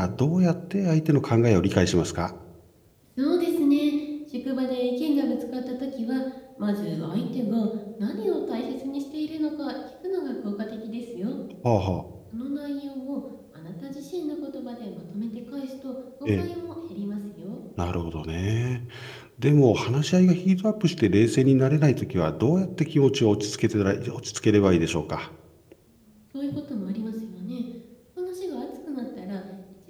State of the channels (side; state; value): both; identical; correlation 1.00